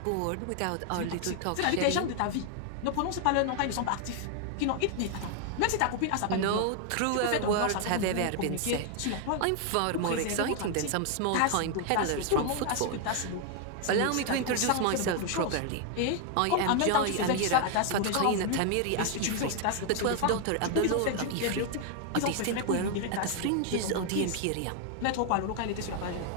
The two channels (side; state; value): both; different; correlation 0.00